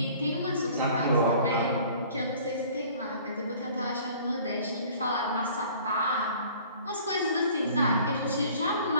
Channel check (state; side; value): inverted; both; correlation -0.51